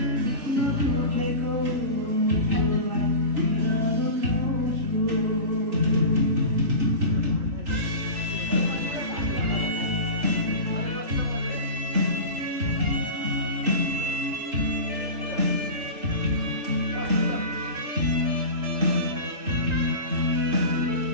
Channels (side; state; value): left; late; 3.8 ms